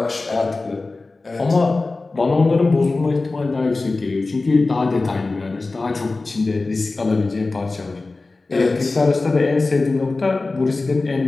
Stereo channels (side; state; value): right; quieter; 3.5 dB